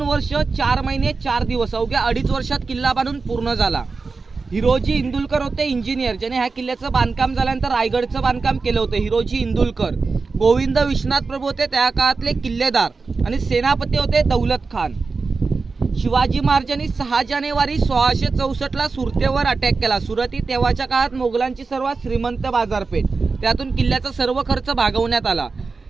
वर्ष 4 महिने 4 दिवस, अवघ्या 2.5 वर्षात किल्ला बांधून पूर्ण झाला। हिरोजी इंदुलकर होते इंजिनियर, ज्याने ह्या किल्ल्याचं बांधकाम झाल्यानंतर रायगडचं बांधकाम केलं होतं। हिरोजी इंदुलकर। गोविंद विश्वनाथ प्रभू होते त्या काळातले किल्लेदार आणि सेनापती होते दौलत खान। शिवाजी महाराजांनी 6 जानेवारी 1664 ला सुरतेवर अटॅक केला। सुरत ही तेव्हाच्या काळात मोगलांची सर्वात श्रीमंत बाजारपेठ, त्यातून किल्ल्याचा सर्व खर्च भागवण्यात आला।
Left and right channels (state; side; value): quieter; left; 4.3 dB